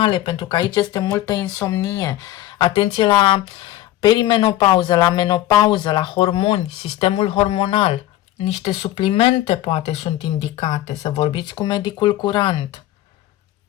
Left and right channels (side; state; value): right; quieter; 14.3 dB